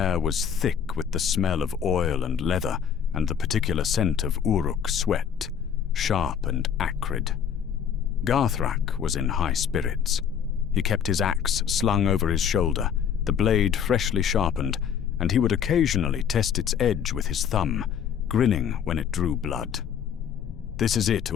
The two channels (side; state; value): right; quieter; 8.2 dB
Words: was thick with the smell of oil and leather and the particular scent of Uruk sweat, sharp and acrid. Garthrák was in high spirits. He kept his axe slung over his shoulder, the blade freshly sharpened, and he would occasionally test its edge with his thumb, grinning when it drew blood. "This is it,